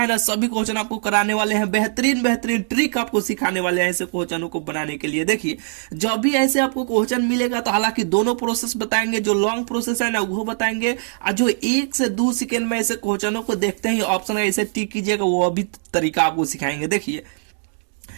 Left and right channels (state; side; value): silent; left; digital silence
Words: ना, सभी क्वेश्चन आपको कराने वाले हैं, बेहतरीन बेहतरीन ट्रिक आपको सिखाने वाले हैं ऐसे क्वेश्चनों को बनाने के लिए। देखिए जब भी ऐसे आपको क्वेश्चन मिलेगा तो हालांकि दोनों प्रोसेस बताएंगे, जो लॉन्ग प्रोसेस है ना वो बताएंगे, और जो 1 से 2 सेकेंड में ऐसे क्वेश्चनों को देखते ही ऑप्शन ऐसे टिक कीजिएगा, वो भी तरीका आपको सिखाएंगे। देखिए